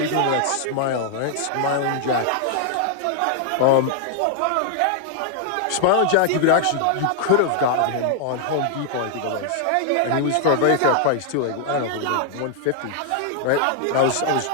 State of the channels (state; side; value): different; both; correlation 0.00